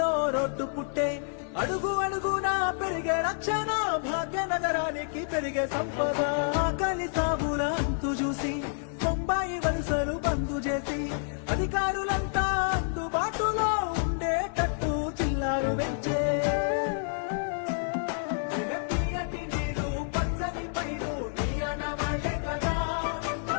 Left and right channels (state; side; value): silent; right; 56 dB below the other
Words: రోడ్డు పుట్టే. అడుగు అడుగునా పెరిగే రక్షణ భాగ్యనగరానికి పెరిగే సంపద. ఆకలి సాగుల అంతు చూసి బొంబాయి వలసలు బంద్ చేసి అధికారులంతా అందుబాటులో ఉండేటట్టు చిల్లారు పెంచే. తీయటి నీరు పచ్చని పైరు నీ అనవాళ్ళే కదా.